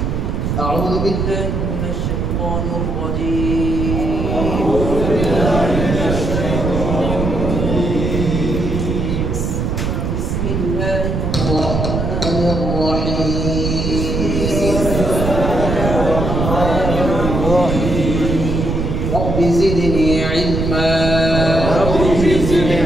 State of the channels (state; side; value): noise; right; rumble, 1 dB below the sound